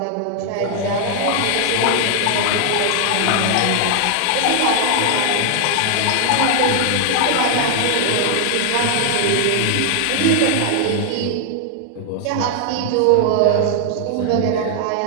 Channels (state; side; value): different; both; correlation 0.00